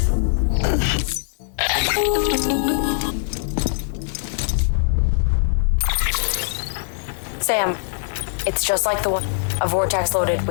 Sam, it's just like the one. A vortex loaded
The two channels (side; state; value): right; silent; digital silence